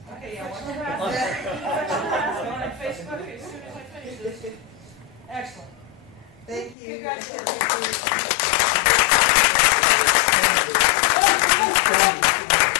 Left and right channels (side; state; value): right; drops out; at 6.8 s